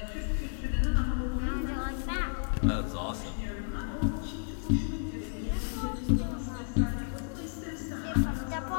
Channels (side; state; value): right; silent; digital silence